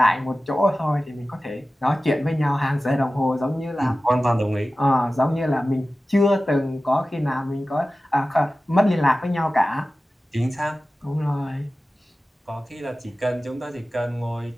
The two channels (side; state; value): both; normal; correlation 0.95